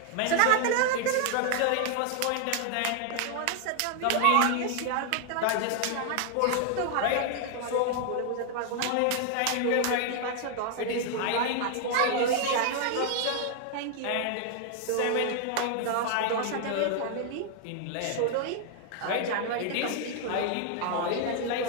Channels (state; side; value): different; both; correlation 0.00